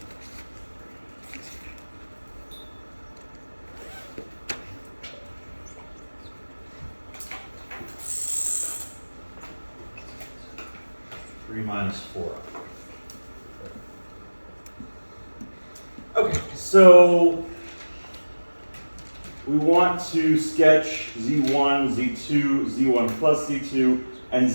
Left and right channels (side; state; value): both; inverted; correlation -1.00